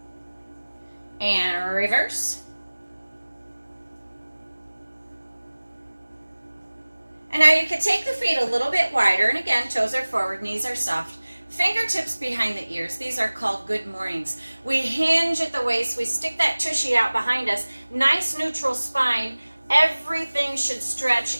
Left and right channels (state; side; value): inverted; both; correlation -1.00